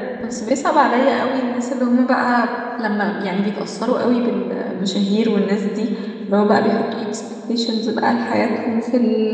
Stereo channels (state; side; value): identical; both; correlation 1.00